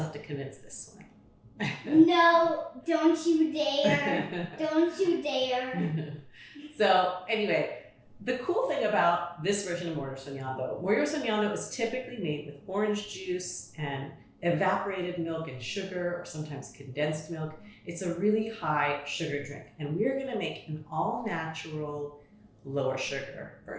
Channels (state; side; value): identical; both; correlation 1.00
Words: have to convince this one. No, don't you dare. Don't you dare. So anyway, the cool thing about this version of Morir Soñando is typically made with orange juice and evaporated milk and sugar, or sometimes condensed milk. It's a really high sugar drink, and we're gonna make an all-natural, lower sugar